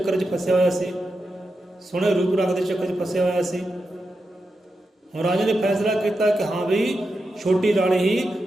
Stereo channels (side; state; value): both; normal; correlation 0.88